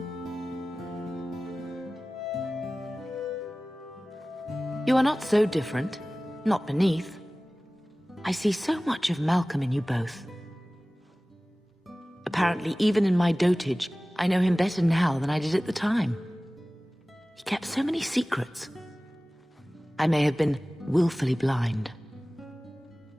You are not so different. Not beneath. I see so much of Malcolm in you both. Apparently, even in my dotage, I know him better now than I did at the time. He kept so many secrets. I may have been willfully blind.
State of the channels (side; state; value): both; normal; correlation 0.98